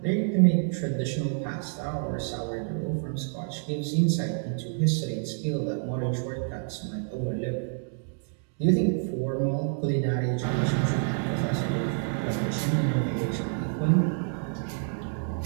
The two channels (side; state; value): left; silent; 59 dB below the other